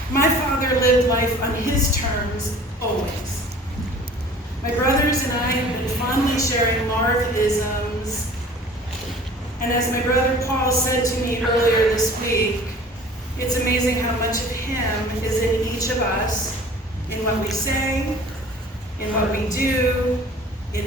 My father lived life on his terms, always. My brothers and I have been fondly sharing Marv-isms, and as my brother Paul said to me earlier this week, it's amazing how much of him is in each of us, in what we say, in what we do, in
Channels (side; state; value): both; normal; correlation 0.46